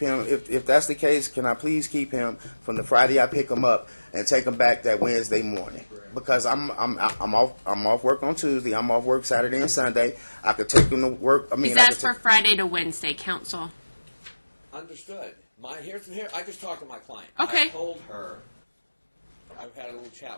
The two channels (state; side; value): inverted; both; correlation -1.00